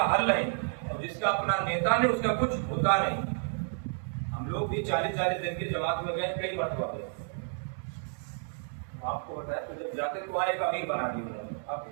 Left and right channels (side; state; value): left; silent; 57 dB below the other